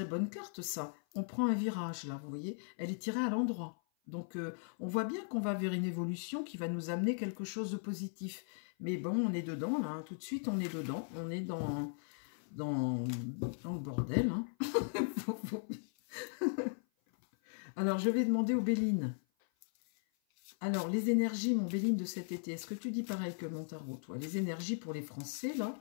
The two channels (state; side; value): silent; right; 53 dB below the other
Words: bonne carte, ça. On prend un virage, là, vous voyez. Elle est tirée à l'endroit. Donc, on voit bien qu'on va vers une évolution qui va nous amener quelque chose de positif. Mais bon, on est dedans, là. Hein. Tout de suite, on est dedans. On est dans le bordel. Hein. Alors, je vais demander aux Béline. Alors, les énergies, mon Béline, de cet été, est-ce que tu dis pareil que mon tarot, toi? Les énergies pour les Français, là.